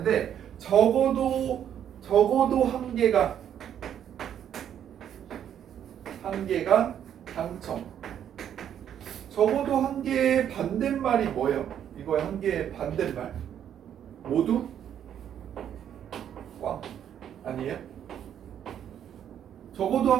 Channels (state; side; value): quieter; left; 9.6 dB